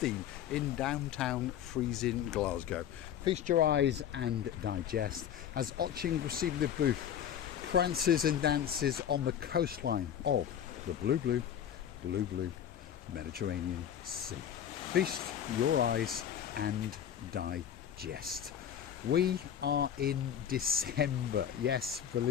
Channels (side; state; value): right; quieter; 9.5 dB